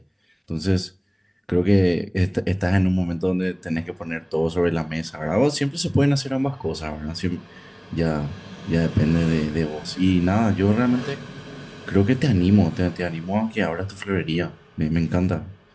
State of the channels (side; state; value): both; identical; correlation 1.00